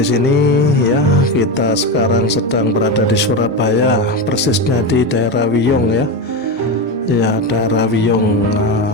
sini ya. Kita sekarang sedang berada di Surabaya, persisnya di daerah Wiyung ya. Ya, daerah Wiyung.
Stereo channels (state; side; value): normal; both; correlation 0.16